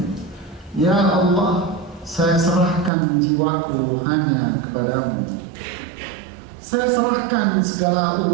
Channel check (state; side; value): drops out; left; at 2.9 s